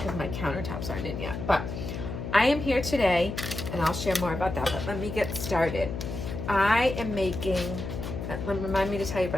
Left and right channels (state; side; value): noise; left; hum, 6 dB below the sound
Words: my countertops aren't in yet. But I am here today, and I'll share more about that, but let me get started. I am making, remind me to tell you